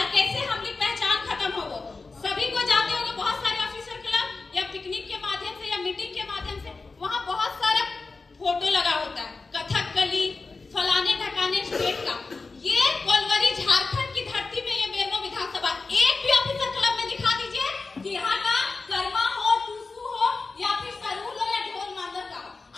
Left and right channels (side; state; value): right; quieter; 3.9 dB